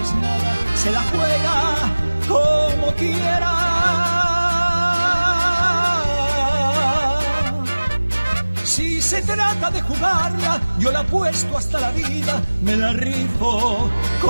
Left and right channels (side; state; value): both; inverted; correlation -1.00